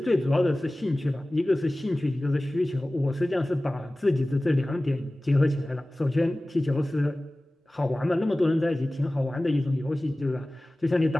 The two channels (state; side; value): normal; both; correlation 0.97